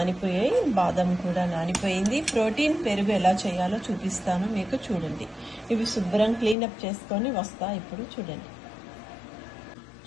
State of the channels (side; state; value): right; drops out; at 6.6 s